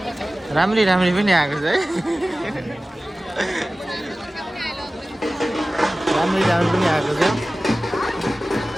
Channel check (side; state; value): both; normal; correlation 0.97